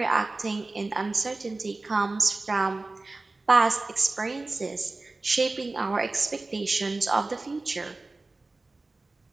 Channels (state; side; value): quieter; left; 3.3 dB